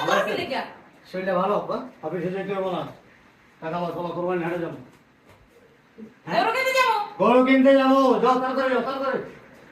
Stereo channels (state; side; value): identical; both; correlation 1.00